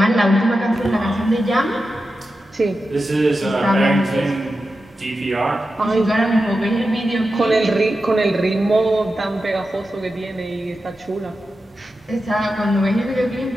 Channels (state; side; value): normal; both; correlation 0.91